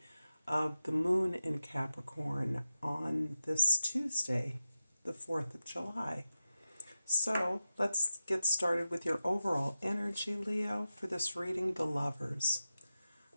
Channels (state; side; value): inverted; both; correlation -0.93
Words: of the moon in Capricorn on this Tuesday, the 4th of July. So let's get started with your overall energy, Leo, for this reading, the Lovers.